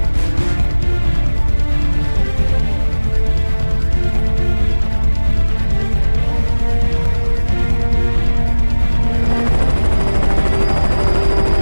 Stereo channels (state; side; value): inverted; both; correlation -1.00